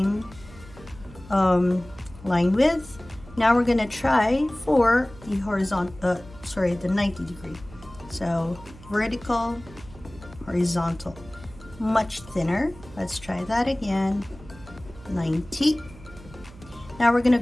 line width. Now we're gonna try for the horizontal, the 90-degree. So vertical, horizontal, much thinner. Let's try that again. 90. Now we're gonna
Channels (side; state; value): right; noise; hum, 20 dB below the sound